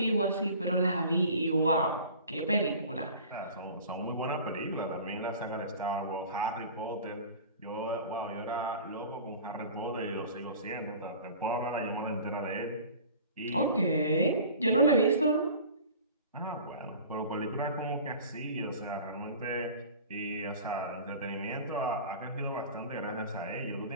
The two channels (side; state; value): both; inverted; correlation -0.42